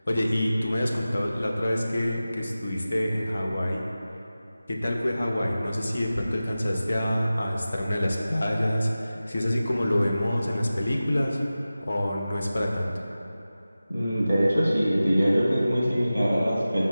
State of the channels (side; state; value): both; inverted; correlation -0.95